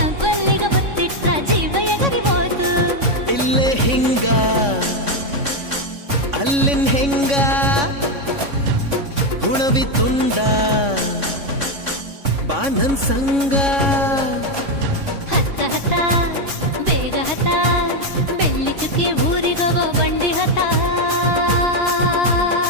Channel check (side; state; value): left; late; 3.6 ms